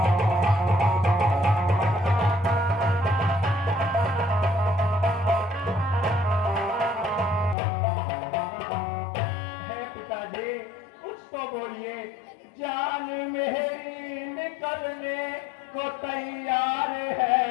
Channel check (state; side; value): drops out; right; at 7.6 s